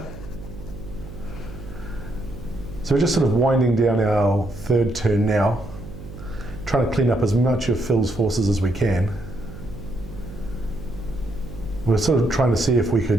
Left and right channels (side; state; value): right; noise; hum, 14 dB below the sound